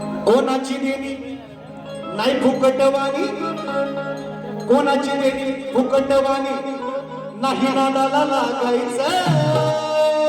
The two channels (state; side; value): identical; both; correlation 1.00